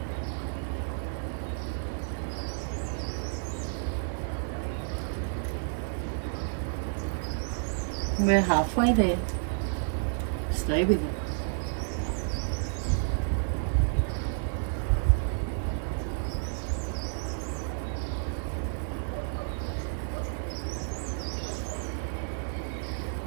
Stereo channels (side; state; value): left; silent; digital silence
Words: We're halfway there. Stay with it.